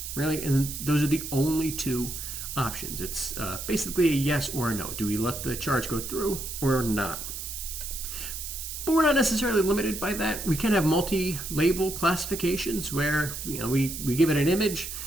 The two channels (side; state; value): right; noise; hiss, 7 dB below the sound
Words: really? And those are the only two options. It's basically a yes or a no. Do we let the charge go through or not? But we're not necessarily limited by that. We can have multi-label classifications where we give it an image